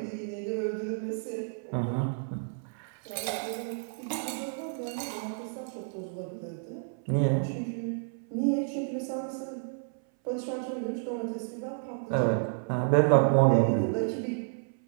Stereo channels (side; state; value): left; silent; 57 dB below the other